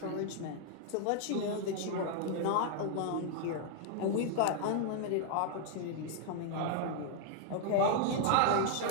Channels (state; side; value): different; both; correlation -0.01